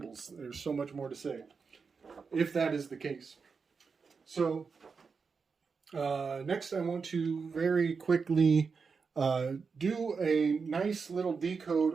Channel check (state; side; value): quieter; left; 5.2 dB